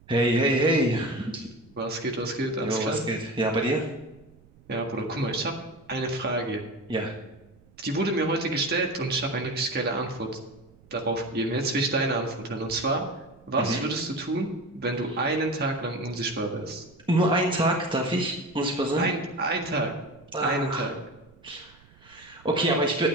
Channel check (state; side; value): noise; right; rumble, 27 dB below the sound